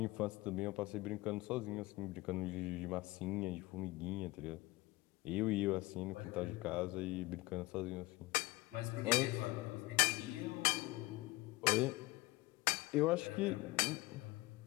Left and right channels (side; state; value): right; quieter; 20.8 dB